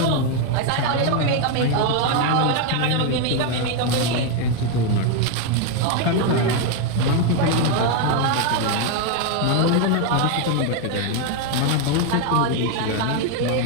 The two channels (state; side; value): different; both; correlation 0.01